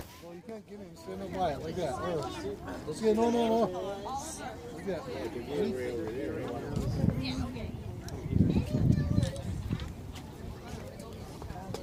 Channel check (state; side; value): identical; both; correlation 1.00